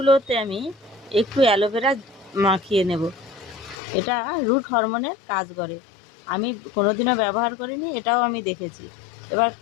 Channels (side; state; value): right; drops out; at 3.8 s